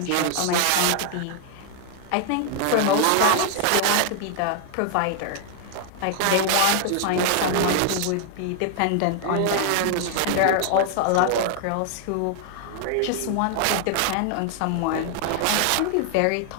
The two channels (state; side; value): different; both; correlation 0.00